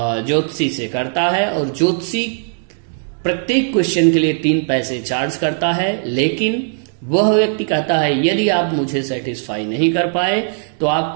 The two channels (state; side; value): silent; left; digital silence